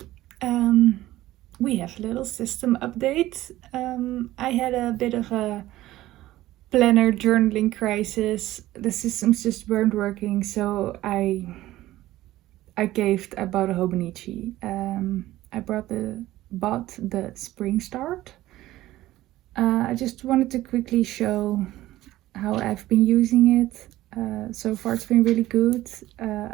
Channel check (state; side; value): quieter; left; 15.7 dB